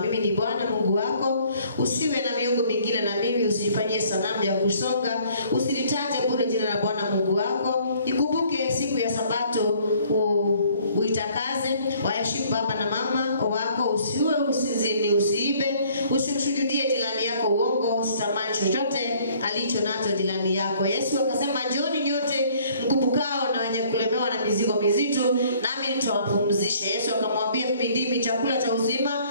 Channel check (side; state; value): both; inverted; correlation -0.59